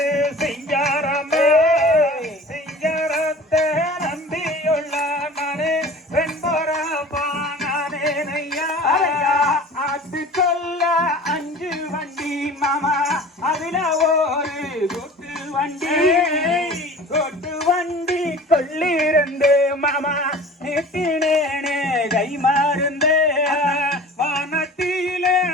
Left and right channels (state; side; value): normal; both; correlation 0.41